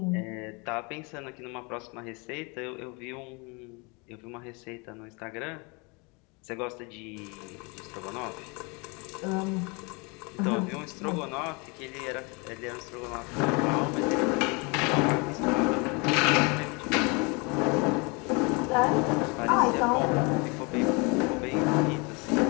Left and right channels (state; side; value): quieter; right; 30.0 dB